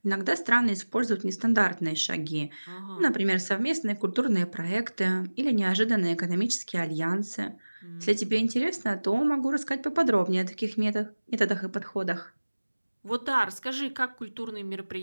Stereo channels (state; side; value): inverted; both; correlation -1.00